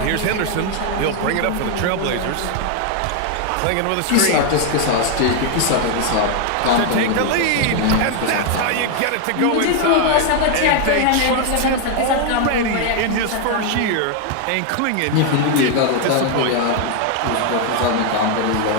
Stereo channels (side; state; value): both; different; correlation 0.00